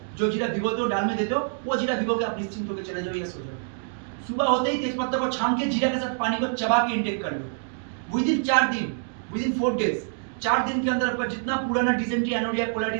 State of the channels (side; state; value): left; silent; digital silence